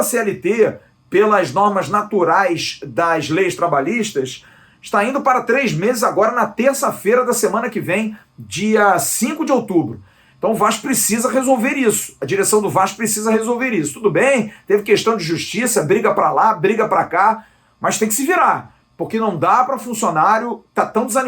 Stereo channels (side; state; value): both; identical; correlation 1.00